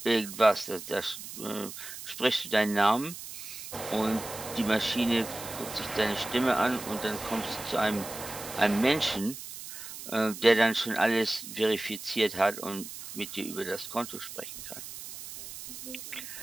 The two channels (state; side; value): noise; right; hiss, 11 dB below the sound